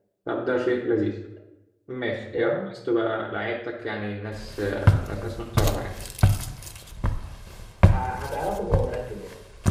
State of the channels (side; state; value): both; identical; correlation 1.00